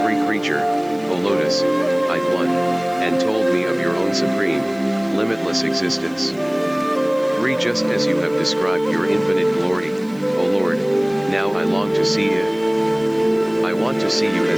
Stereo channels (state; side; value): noise; right; hiss, 27 dB below the sound